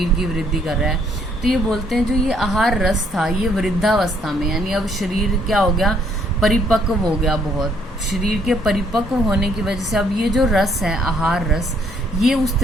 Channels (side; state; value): both; normal; correlation 0.67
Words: की वृद्धि कर रहा है। तो ये बोलते हैं जो ये आहार रस था ये वृद्धावस्था में, यानी अब शरीर क्या हो गया, परिपक्व हो गया बहुत, शरीर के परिपक्व होने की वजह से अब ये जो रस है आहार रस ये उस